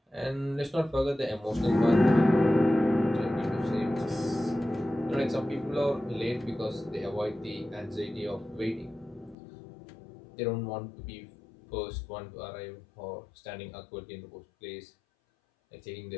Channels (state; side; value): drops out; right; at 9.3 s